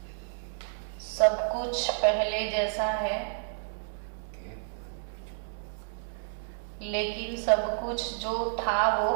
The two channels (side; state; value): left; silent; digital silence